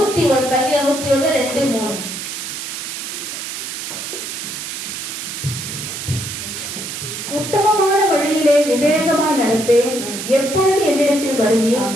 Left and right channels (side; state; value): right; noise; hiss, 6 dB below the sound